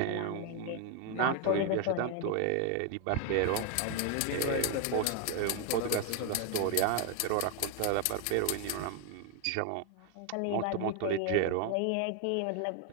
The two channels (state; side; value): different; both; correlation 0.01